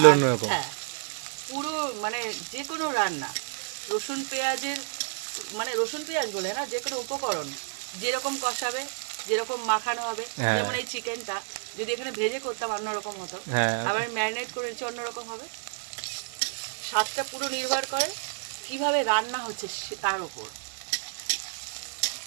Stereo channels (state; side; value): silent; left; digital silence